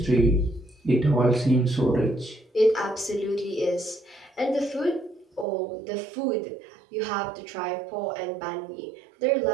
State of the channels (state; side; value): drops out; left; at 5.5 s